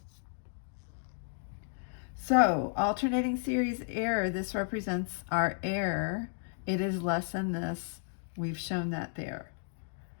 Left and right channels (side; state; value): right; silent; digital silence